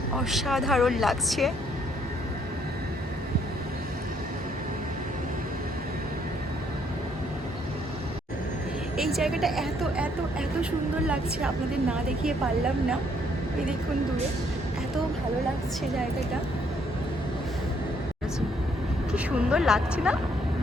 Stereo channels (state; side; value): normal; both; correlation 0.68